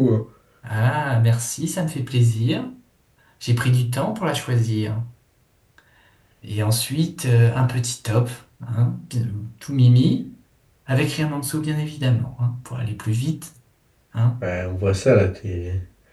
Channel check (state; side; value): identical; both; correlation 1.00